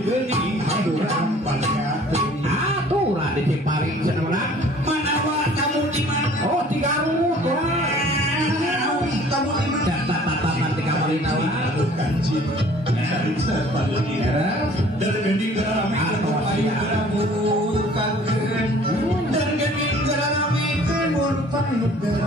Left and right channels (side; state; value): both; normal; correlation 0.52